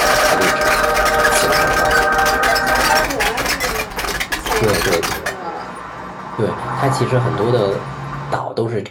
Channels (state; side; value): identical; both; correlation 1.00